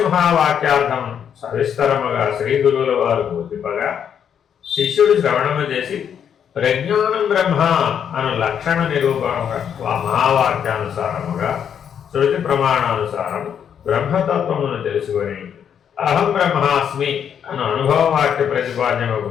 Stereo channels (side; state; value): right; quieter; 8.3 dB